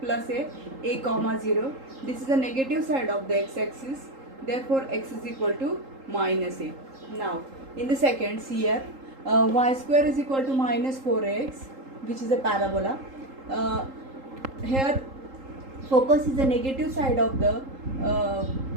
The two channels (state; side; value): late; left; 3.8 ms